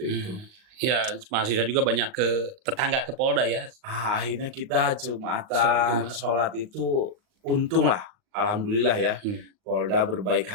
itu. Ya, mahasiswa juga banyak ke tetangga ke Polda ya. Akhirnya kita Jumatan, sholat itu untung lah, alhamdulillah ya. Polda berbaik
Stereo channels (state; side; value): late; left; 38 ms